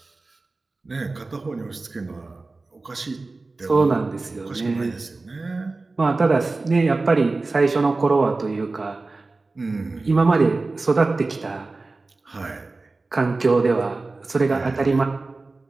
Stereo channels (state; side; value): quieter; left; 3.5 dB